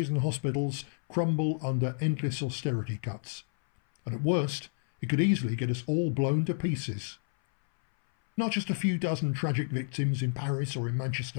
and hospitals crumble under endless austerity cuts. And at worst, it could easily get us all blown to pieces. Not just a few dozen tragic victims in Paris or in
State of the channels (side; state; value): right; silent; 58 dB below the other